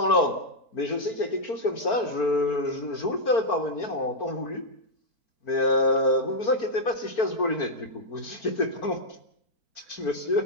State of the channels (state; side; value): late; right; 4.5 ms